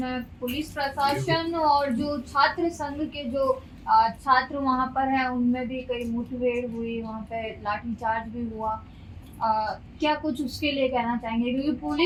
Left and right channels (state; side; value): identical; both; correlation 1.00